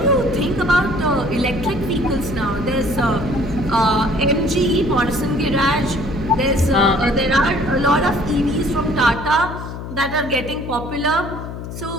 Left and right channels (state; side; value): noise; left; hum, 9 dB below the sound